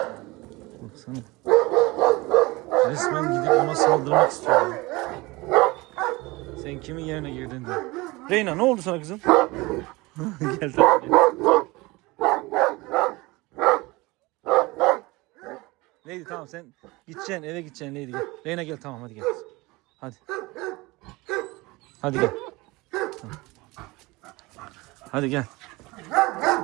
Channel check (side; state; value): left; quieter; 22.7 dB